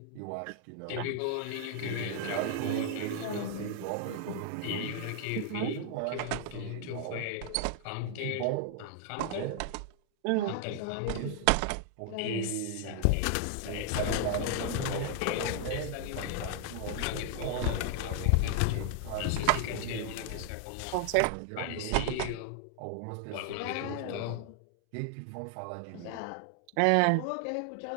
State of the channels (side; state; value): both; different; correlation 0.00